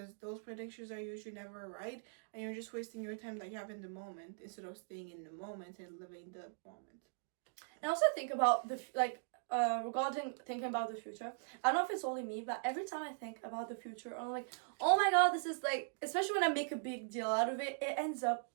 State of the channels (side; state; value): left; silent; digital silence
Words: those predictions are usually never right, and you're just wasting your time that you have in the moment instead of staying in the moment and living the moment. And also think about regarding thinking about the future, I don't know if it's only me, but every time I think about the future, I'm oh my god, this is especially when I make a big deal out of it, it ends up